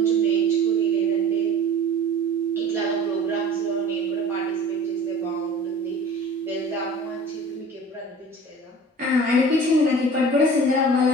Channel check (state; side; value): normal; both; correlation 0.42